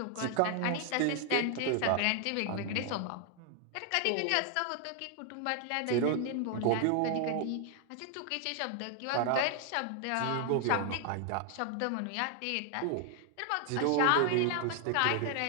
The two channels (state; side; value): different; both; correlation 0.00